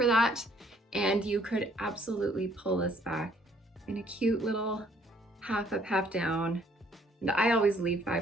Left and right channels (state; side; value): normal; both; correlation 0.63